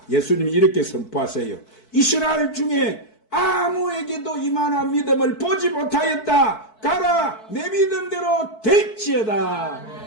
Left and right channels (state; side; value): late; right; 4.6 ms